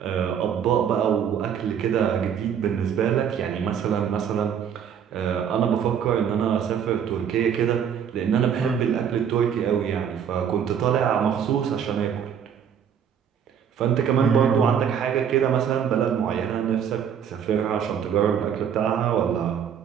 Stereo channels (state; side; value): quieter; left; 8.2 dB